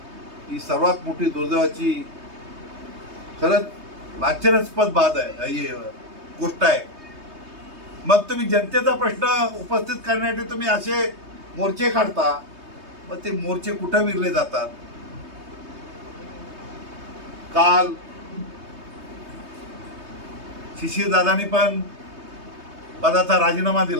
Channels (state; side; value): late; left; 3.2 ms